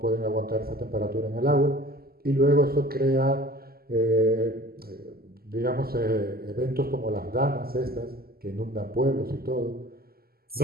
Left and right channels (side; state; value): left; late; 0.45 ms